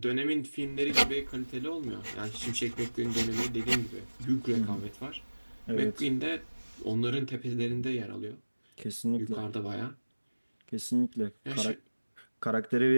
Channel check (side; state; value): both; inverted; correlation -1.00